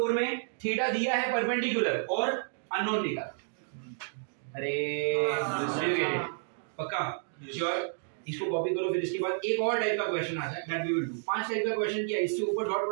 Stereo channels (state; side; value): silent; left; digital silence